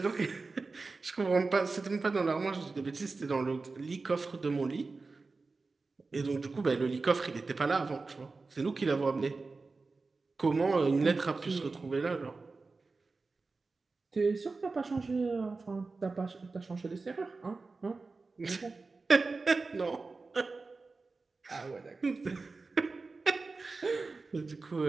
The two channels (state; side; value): quieter; left; 3.9 dB